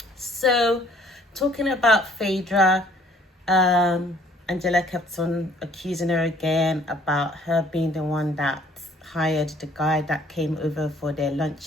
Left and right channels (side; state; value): both; normal; correlation 0.59